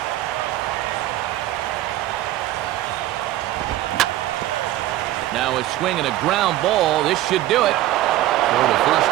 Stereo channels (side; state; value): left; quieter; 14.8 dB